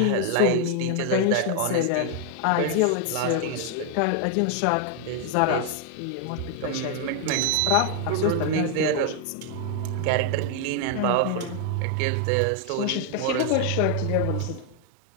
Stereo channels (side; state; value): both; different; correlation 0.00